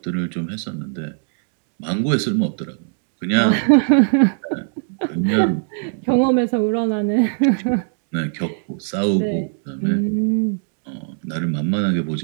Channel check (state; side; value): silent; left; 65 dB below the other